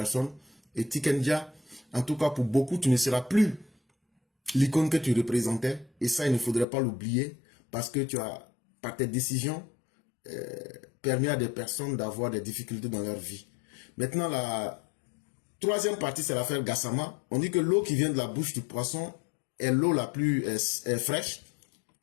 Et Tiken Jah, en tout cas pour beaucoup, tu ne seras plus l'icône que tu représentais. Et ça, il ne faudrait pas l'oublier. Parce que tu as, par tes décisions, permis à des personnes d'avoir des difficultés dans leur vie. Maintenant, la troisième partie, c'est l'affaire Gassama. On dit que l'eau qui vient de la bouche du poisson est l'eau la plus fraîche.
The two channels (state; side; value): drops out; right; at 6.7 s